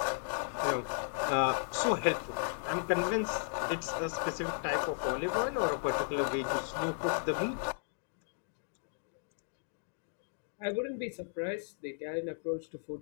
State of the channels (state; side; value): silent; right; digital silence